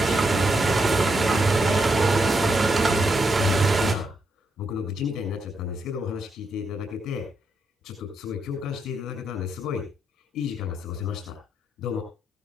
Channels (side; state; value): both; normal; correlation 0.81